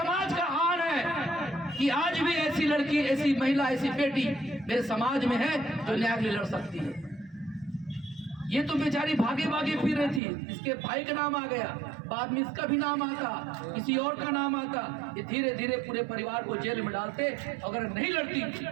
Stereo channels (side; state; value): left; drops out; at 10.2 s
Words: का आन है कि आज भी ऐसी लड़की, ऐसी महिला, ऐसी बेटी मेरे समाज में है जो न्याय के लिए लड़ सकती है। ये तो बेचारी भागे भागे फिर रही थी, इसके भाई का नाम आ गया, बाद में इसका भी नाम आता, किसी और का नाम आता, ये धीरे धीरे पूरे परिवार को जेल में डालते। अगर नहीं लड़ती